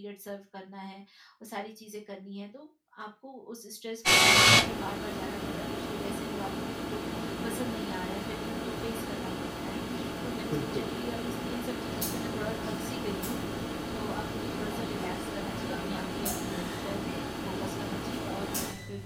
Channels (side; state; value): both; identical; correlation 1.00